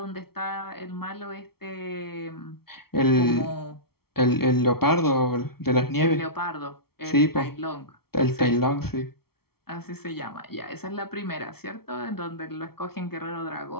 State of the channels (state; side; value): late; right; 0.95 ms